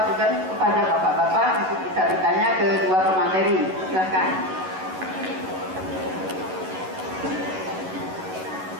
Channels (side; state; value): left; late; 11 ms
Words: kepada bapak-bapak untuk bisa bertanya ke 2 pemateri. Silakan.